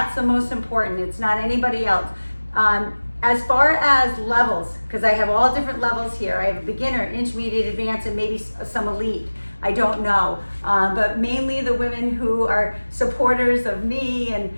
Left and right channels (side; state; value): both; inverted; correlation -1.00